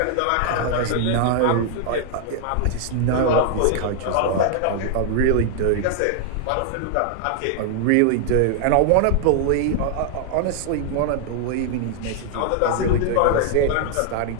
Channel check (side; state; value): both; different; correlation 0.00